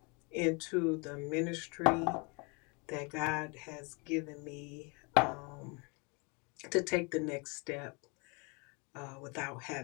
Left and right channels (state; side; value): quieter; right; 31.1 dB